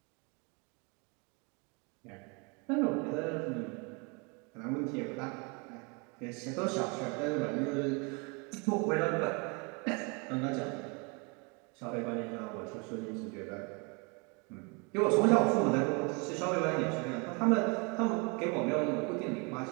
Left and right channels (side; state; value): left; quieter; 31.7 dB